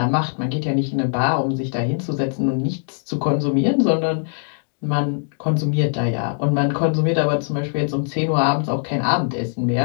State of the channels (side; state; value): right; silent; digital silence